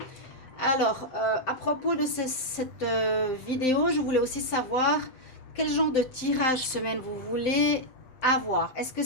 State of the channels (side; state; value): right; late; 7.8 ms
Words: Alors, à propos de cette vidéo, je voulais aussi savoir quel genre de tirage semaine vous voulez avoir. Est-ce que